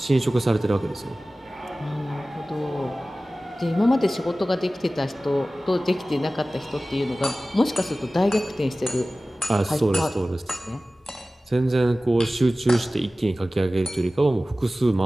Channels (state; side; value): normal; both; correlation 0.97